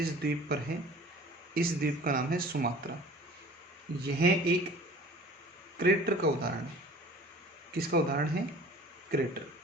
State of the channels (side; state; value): both; normal; correlation 0.46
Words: द्वीप पर है, इस द्वीप का नाम है सुमात्रा। यह एक क्रेटर का उदाहरण है। किसका उदाहरण है, क्रेटर।